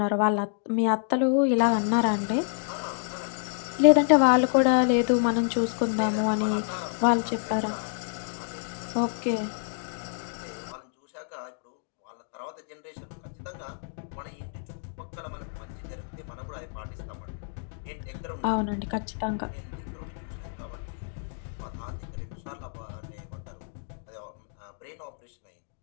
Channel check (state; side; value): silent; right; digital silence